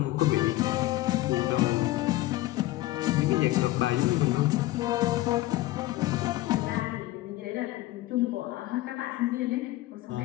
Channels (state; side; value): quieter; right; 17.0 dB